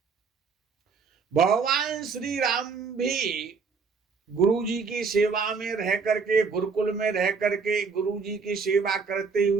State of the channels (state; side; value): quieter; left; 5.2 dB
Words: भगवान श्री राम भी गुरु जी की सेवा में रह करके, गुरुकुल में रह करके गुरु जी की सेवा करते